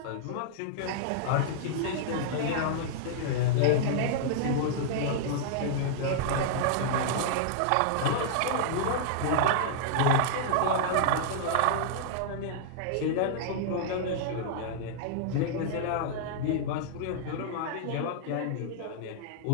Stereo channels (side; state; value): both; different; correlation -0.01